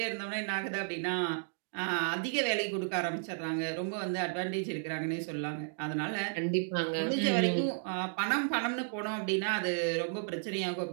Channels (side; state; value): left; silent; digital silence